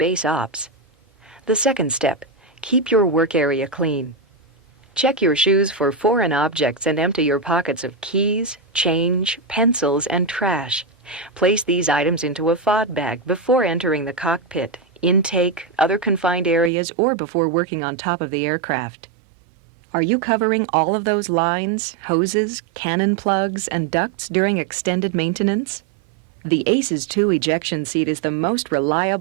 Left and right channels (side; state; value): left; drops out; at 16.7 s